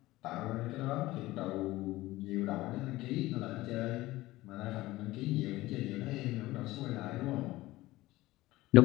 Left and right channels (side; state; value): right; quieter; 18.1 dB